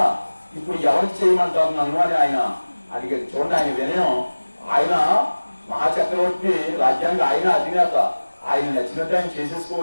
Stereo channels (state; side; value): inverted; both; correlation -1.00